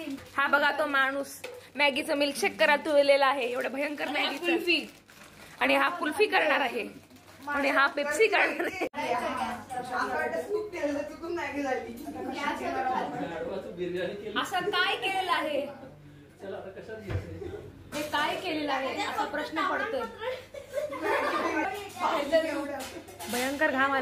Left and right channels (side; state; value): both; identical; correlation 1.00